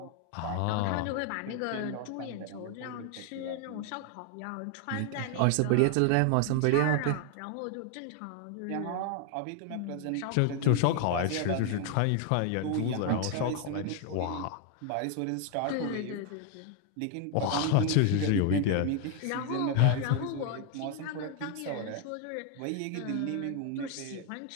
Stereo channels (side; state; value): both; different; correlation 0.00